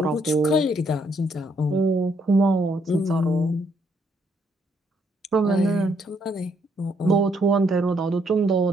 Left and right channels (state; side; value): normal; both; correlation 0.72